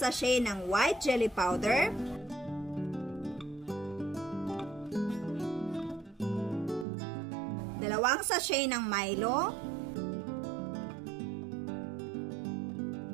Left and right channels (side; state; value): left; drops out; at 6.9 s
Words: ng white jelly powder. Dalawang sachet ng Milo,